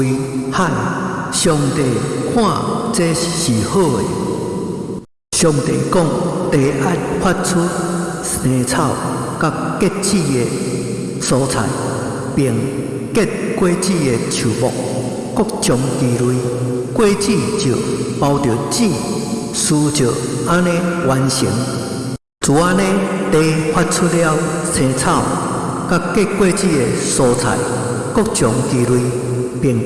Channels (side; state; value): both; identical; correlation 1.00